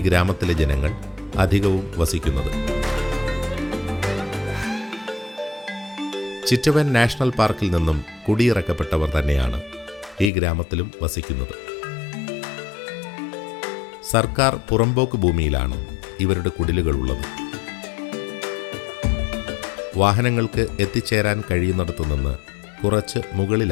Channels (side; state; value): right; drops out; at 10.3 s